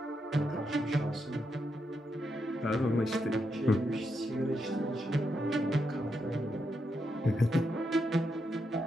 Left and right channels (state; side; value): normal; both; correlation 0.83